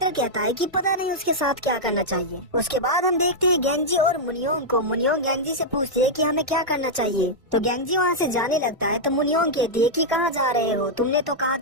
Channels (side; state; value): both; normal; correlation -0.05